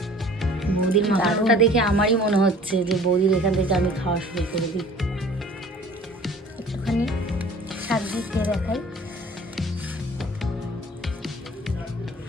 বৌদির মাখানোটা দেখে আমারই মনে হচ্ছে যে বৌদির এখান থেকে আমি খাওয়া শুরু করে দিই। একটুখানি শাক দিয়ে খেয়ে দেখাই।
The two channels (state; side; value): normal; both; correlation 0.49